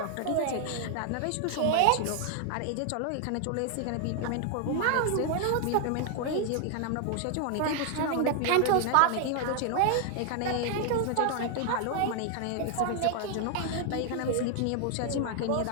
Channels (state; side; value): different; both; correlation 0.00